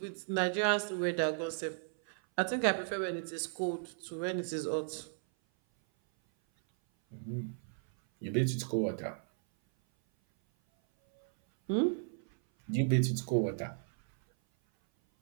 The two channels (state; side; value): silent; left; 55 dB below the other